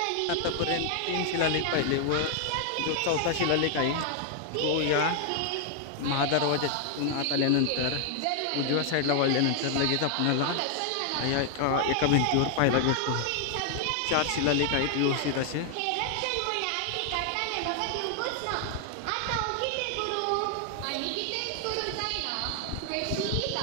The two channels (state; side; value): different; both; correlation 0.00